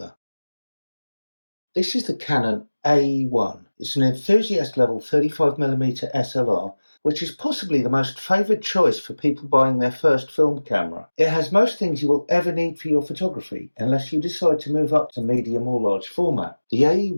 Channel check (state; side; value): inverted; both; correlation -1.00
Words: This is the Canon AE1. It's an enthusiast level 35mm SLR, which is possibly the most favoured choice for people buying their first film camera. It has most things you will ever need for your photography, unless you decide to move up to medium or large format. The